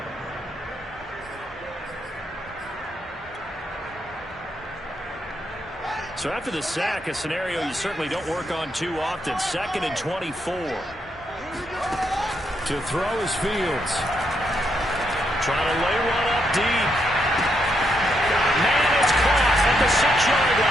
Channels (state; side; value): normal; both; correlation 0.79